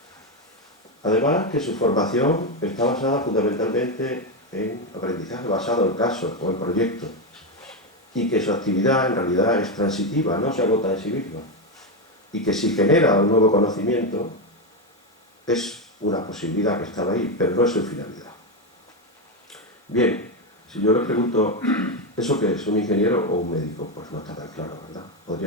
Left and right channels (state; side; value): normal; both; correlation 0.09